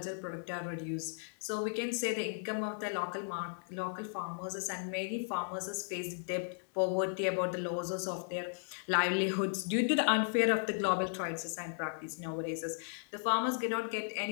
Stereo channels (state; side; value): silent; right; digital silence